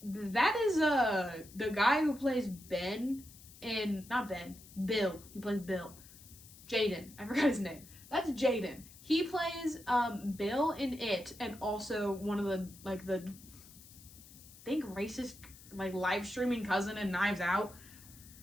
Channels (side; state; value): left; noise; hiss, 20 dB below the sound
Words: the guy who plays Bill. He plays Bill. Jaden. I forgot his name. That's Jaden. He plays Bill in It, and also one of the I think racist live streaming cousin in Knives Out.